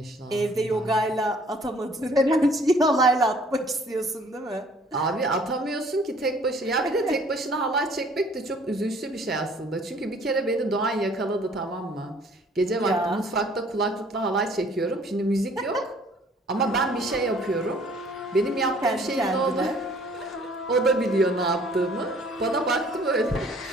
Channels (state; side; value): normal; both; correlation 0.56